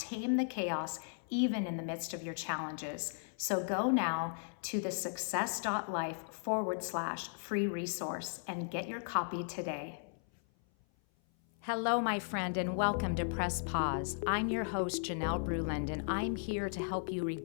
the chaos, even in the midst of your challenges. So go now to thesuccess.life/free resource and get your copy today. Hello, my friend, and welcome to Press Pause. I'm your host, Janelle Bruland, and I'm here to help you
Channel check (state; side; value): silent; right; 54 dB below the other